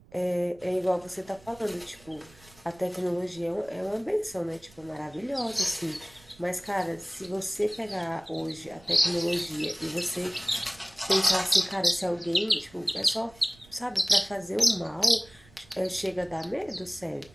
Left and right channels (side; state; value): right; noise; rumble, 25 dB below the sound